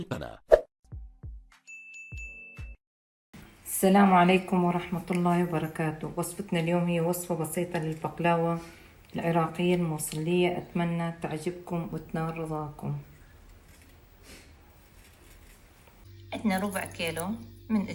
السلام عليكم ورحمة الله وبركاته. وصفتنا اليوم هي وصفة بسيطة للبقلاوة العراقية الموصلية، أتمنى تعجبكم وتنال رضاكم. عندنا ربع كيلو من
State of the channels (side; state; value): both; identical; correlation 1.00